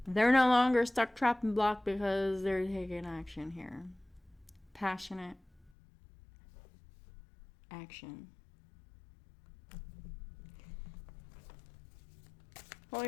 they're no longer stuck, trapped, and blocked because they're taking action here. Passionate action.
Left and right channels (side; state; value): right; drops out; at 5.7 s